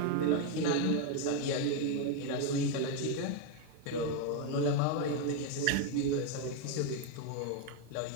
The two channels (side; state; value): both; different; correlation 0.01